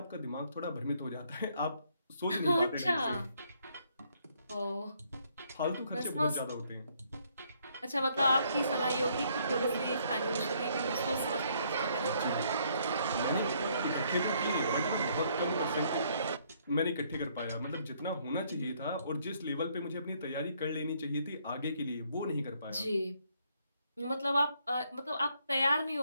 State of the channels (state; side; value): inverted; both; correlation -0.69